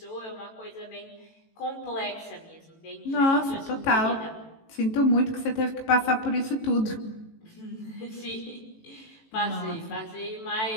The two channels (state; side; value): late; right; 18 ms